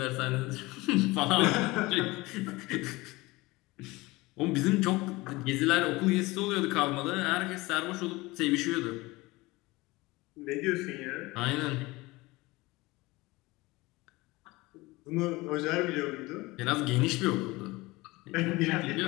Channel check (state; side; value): quieter; right; 21.6 dB